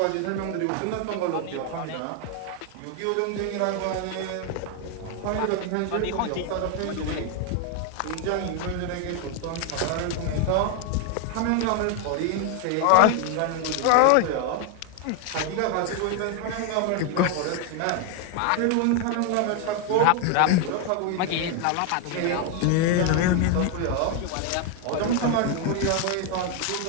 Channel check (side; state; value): both; different; correlation 0.01